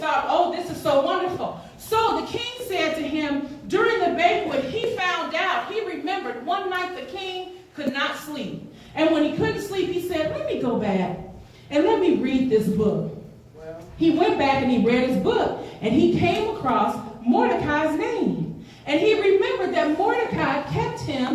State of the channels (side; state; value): both; identical; correlation 1.00